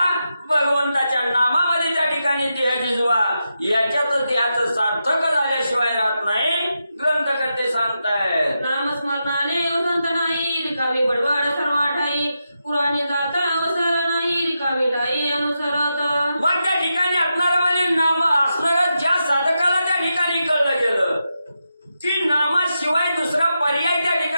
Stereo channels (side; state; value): both; inverted; correlation -0.87